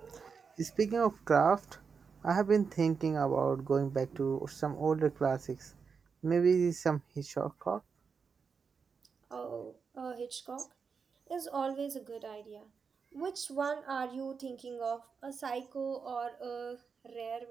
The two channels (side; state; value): left; quieter; 5.6 dB